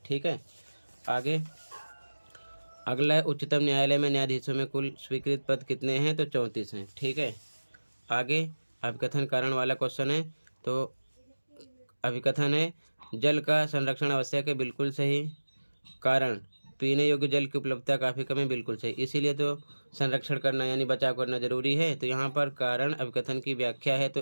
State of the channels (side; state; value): both; inverted; correlation -1.00